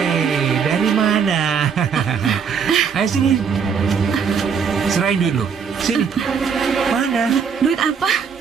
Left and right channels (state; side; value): quieter; left; 6.5 dB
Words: dari mana? Ayo sini. Serahin duit lu. Sini. Mana? Duit apa?